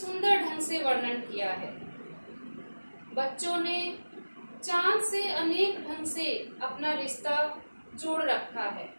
ढंग से वर्णन किया है। बच्चों ने चांद से अनेक ढंग से अपना रिश्ता जोड़ रखा है।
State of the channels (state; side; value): inverted; both; correlation -1.00